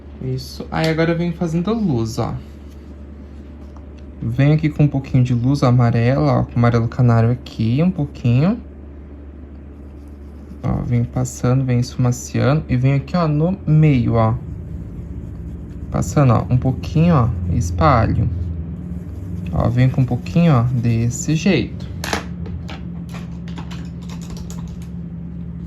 Isso. Aí agora eu venho fazendo luz, ó. Venho aqui com um pouquinho de luz amarela, ó, com amarelo canário aqui, um pouquinho. Ó, venho passando, venho esfumaciando e venho aqui, ó, no meio, ó. Passando, ó, um pouquinho, ó, e espalho. Ó, venho com um pouquinho, ó, desse jeito.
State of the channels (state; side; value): identical; both; correlation 1.00